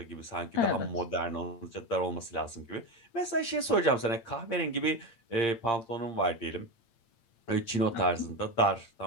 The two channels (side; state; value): right; late; 8.7 ms